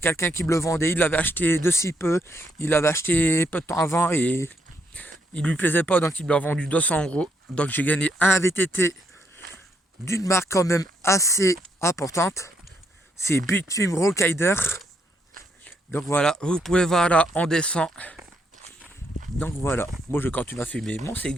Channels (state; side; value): normal; both; correlation 0.75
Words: qui me le vendait, il l'avait acheté de si peu, il l'avait acheté peu de temps avant et il lui plaisait pas, donc il me l'a vendu 200 €. Donc j'ai gagné un VTT d'une marque quand même assez importante, c'est Bitfilm Rollrider. Donc voilà, vous pouvez voir là, on descend. Donc voilà, moi je continue à fumer mon